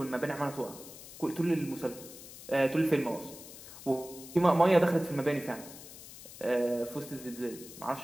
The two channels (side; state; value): left; noise; hiss, 15 dB below the sound